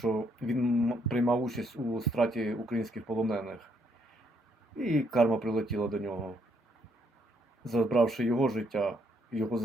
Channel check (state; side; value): normal; both; correlation 0.71